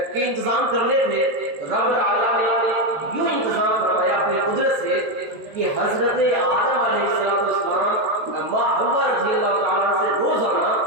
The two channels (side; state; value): left; late; 13 ms